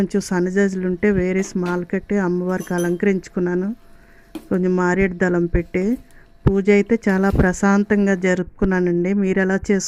సన్నజాజులు ఉంటే వేరే స్మాల్ కట్టి అమ్మవారికి అలంకరించుకున్నాను. కొంచెం మారేడు దళం పెట్టి పూజ అయితే చాలా ప్రశాంతంగా జరుపుకున్నానండి. మీరు ఎలా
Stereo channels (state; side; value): identical; both; correlation 1.00